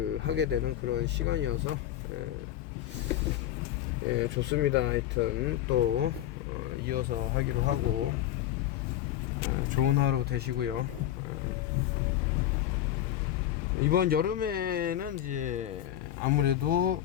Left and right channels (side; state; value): right; quieter; 12.2 dB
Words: 하게 되는 그런 시간이어서 좋습니다. 하여튼 또 이어서 하기로 하고 좋은 하루 되시고요. 이번 여름에는 이제 아무래도